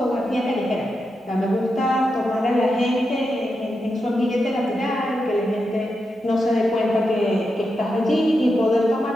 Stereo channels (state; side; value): normal; both; correlation 0.87